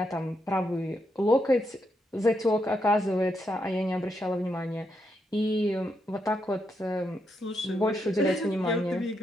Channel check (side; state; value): both; normal; correlation 0.81